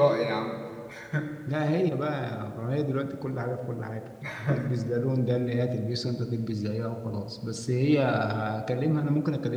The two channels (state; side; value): identical; both; correlation 1.00